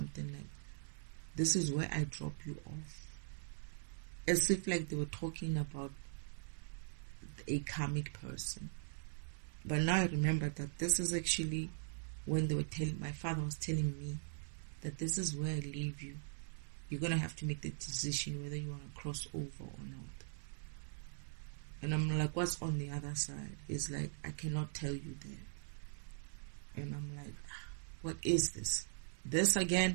like, this is where I drop you off. As if like they were talking about a karmic person. But now I remember that this is actually when they were telling, my father was telling me that this is where I leave you. You're going to have to make the decision whether you want to cross over or not. And I'm like, what's on the other side? It's like, I cannot tell you that. And I'm like, what is this? This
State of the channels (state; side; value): silent; left; 50 dB below the other